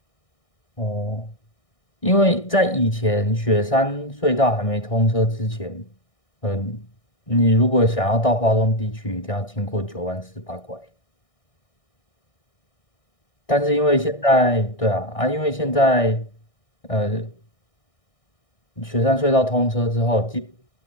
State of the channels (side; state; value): right; late; 1.6 ms